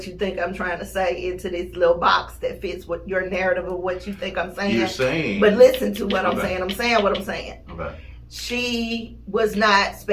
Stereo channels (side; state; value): both; identical; correlation 1.00